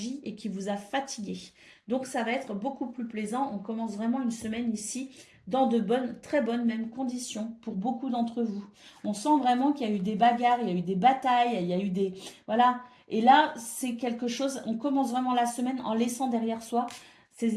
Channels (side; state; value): both; identical; correlation 1.00